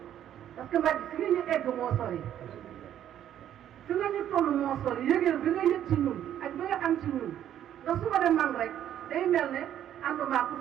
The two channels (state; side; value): quieter; left; 10.8 dB